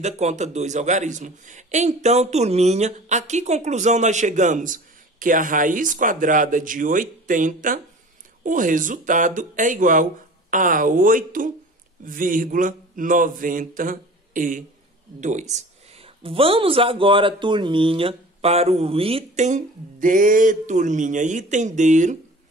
conta 2 algarismos. Então, turminha, a que conclusão nós chegamos? Que a raiz quadrada de 80, o resultado é igual a 8,92. Vamos agora, turminha, para o item D, turminha. Item D,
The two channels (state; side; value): normal; both; correlation 0.41